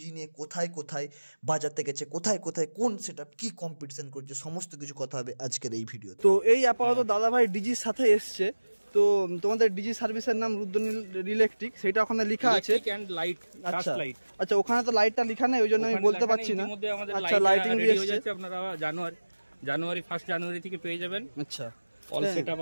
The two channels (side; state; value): both; inverted; correlation -1.00